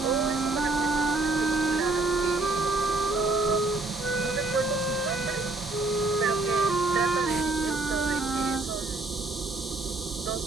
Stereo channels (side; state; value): left; quieter; 3.2 dB